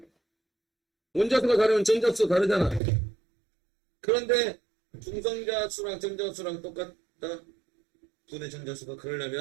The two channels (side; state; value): left; drops out; at 2.8 s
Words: 원자수가 다르면 전자수가 다르잖아. 그런데 중성자수랑 전자수랑 똑같다. 분의 전자수가